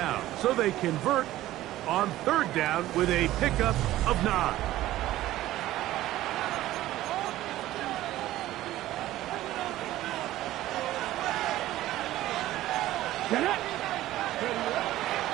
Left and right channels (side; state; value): left; quieter; 15.1 dB